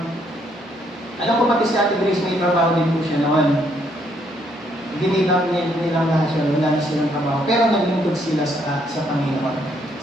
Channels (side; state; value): both; normal; correlation 0.70